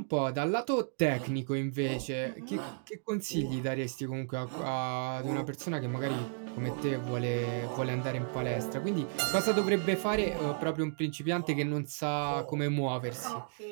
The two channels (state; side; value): silent; left; digital silence